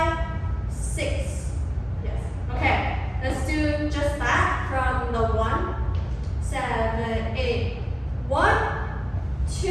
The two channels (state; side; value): identical; both; correlation 1.00